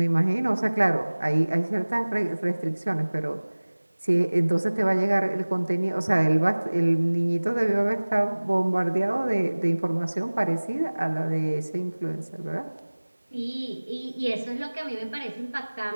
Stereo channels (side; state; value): both; inverted; correlation -1.00